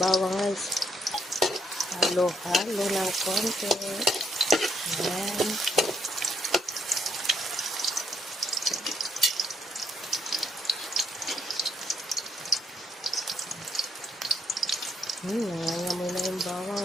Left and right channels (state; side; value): normal; both; correlation 0.71